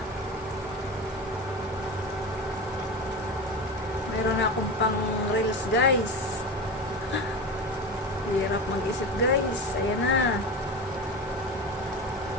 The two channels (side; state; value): both; normal; correlation 0.25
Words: Meron na akong pang reels, guys. Hirap mag-isip, guys. Ayan na.